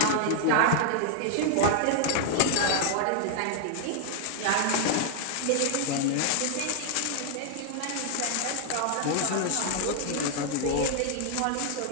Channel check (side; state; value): both; different; correlation 0.00